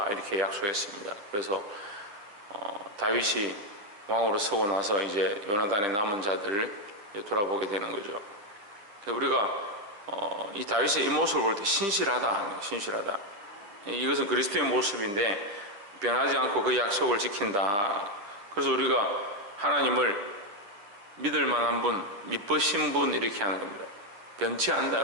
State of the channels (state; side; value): late; left; 10 ms